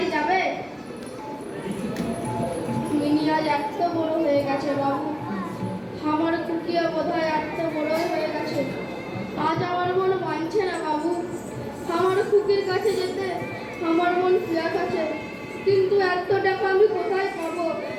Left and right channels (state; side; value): identical; both; correlation 1.00